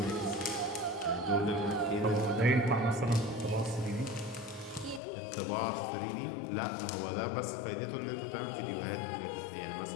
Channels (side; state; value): right; drops out; at 5.0 s